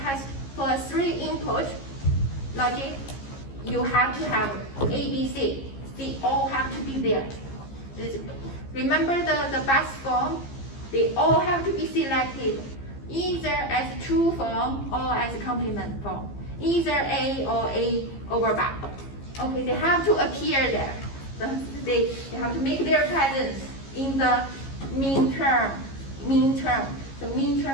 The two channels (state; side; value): late; right; 15 ms